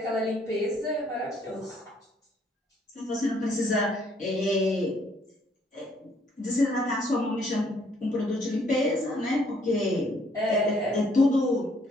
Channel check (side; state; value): both; normal; correlation 0.66